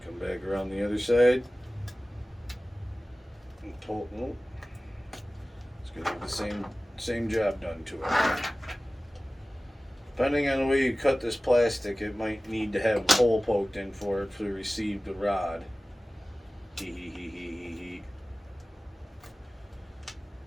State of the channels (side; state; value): both; normal; correlation 0.97